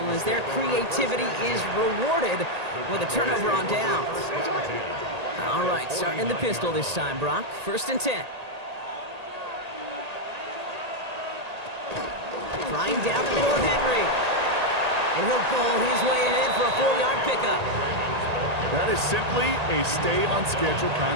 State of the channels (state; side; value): late; left; 1.8 ms